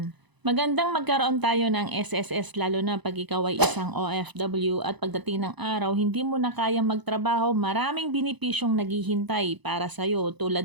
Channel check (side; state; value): left; late; 1.0 ms